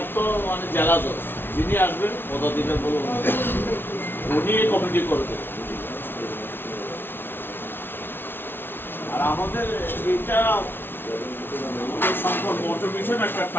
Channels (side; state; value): right; late; 0.11 ms